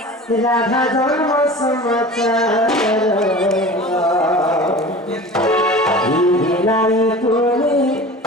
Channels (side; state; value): both; normal; correlation 0.37